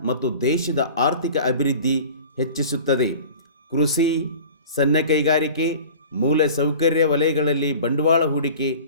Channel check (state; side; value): inverted; both; correlation -0.41